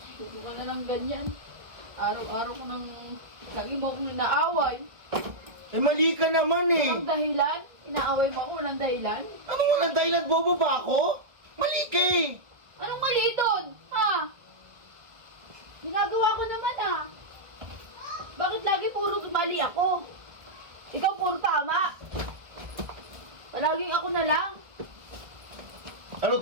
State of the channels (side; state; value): left; late; 1.5 ms